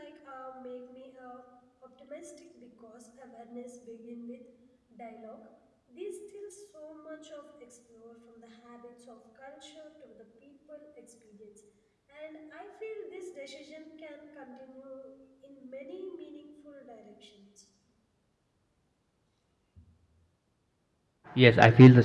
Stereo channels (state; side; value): identical; both; correlation 1.00